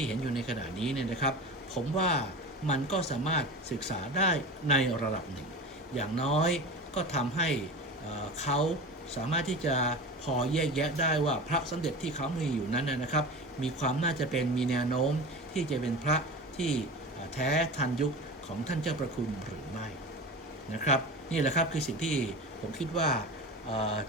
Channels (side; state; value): both; normal; correlation 0.31